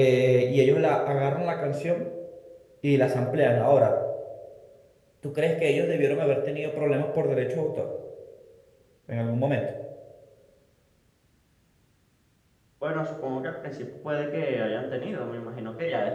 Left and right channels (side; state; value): both; identical; correlation 1.00